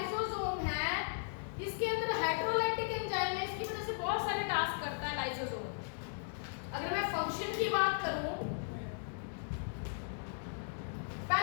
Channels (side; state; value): right; silent; digital silence